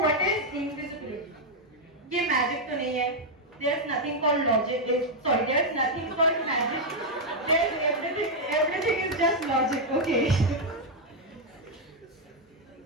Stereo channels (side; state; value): both; normal; correlation -0.01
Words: what is invisibility? ये magic तो नहीं है. There's nothing called logic. Sorry, there's nothing called magic. There's everything is just logic. Okay.